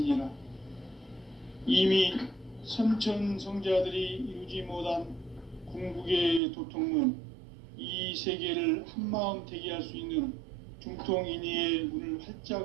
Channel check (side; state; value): left; drops out; at 6.4 s